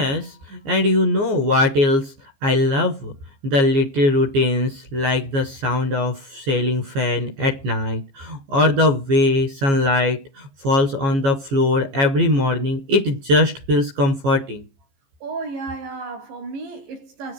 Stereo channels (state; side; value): late; left; 15 ms